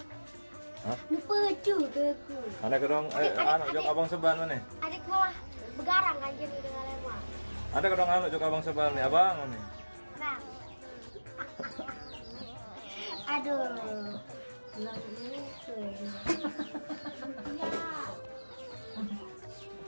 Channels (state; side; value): inverted; both; correlation -1.00